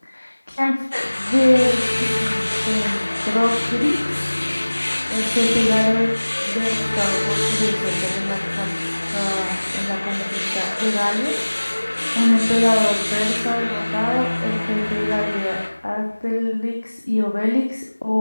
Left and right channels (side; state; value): both; inverted; correlation -1.00